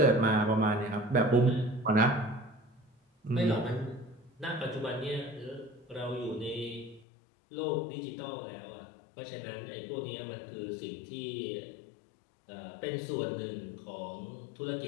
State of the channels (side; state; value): right; drops out; at 7.1 s